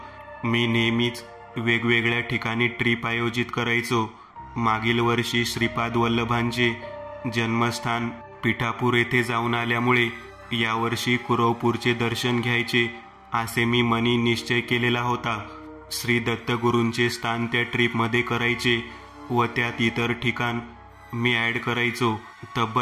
मी नेहमीच वेगवेगळ्या ठिकाणी ट्रिप आयोजित करायचो. मागील वर्षी श्रीपाद वल्लभांचे जन्मस्थान पिठापूर येथे जाऊन आल्यामुळे यावर्षी कुरवपूरचे दर्शन घ्यायचे असे मी मनी निश्चय केलेला होता. श्री दत्तगुरूंचे स्थान त्या ट्रिपमध्ये करायचे व त्यात इतर ठिकाण मी ॲड करायचो.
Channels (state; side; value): identical; both; correlation 1.00